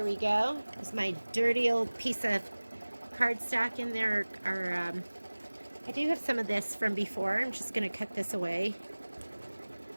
we go. There's my dirty old piece of cardstock in there. I do have some of this from before. I'm just going to cut this away.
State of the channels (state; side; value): inverted; both; correlation -1.00